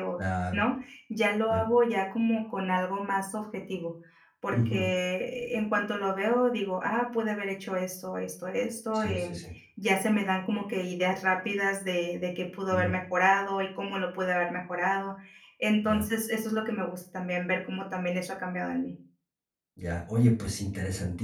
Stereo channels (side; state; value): both; identical; correlation 1.00